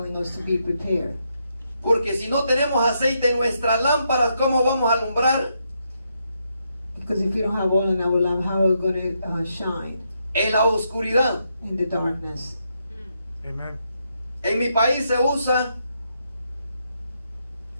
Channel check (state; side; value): inverted; both; correlation -0.79